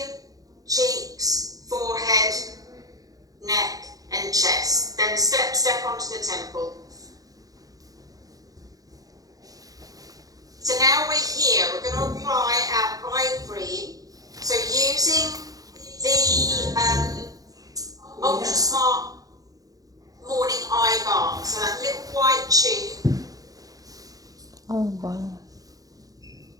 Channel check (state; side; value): late; left; 0.17 ms